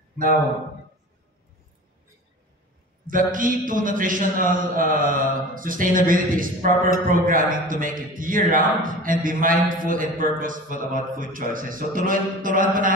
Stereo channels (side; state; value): both; normal; correlation 0.37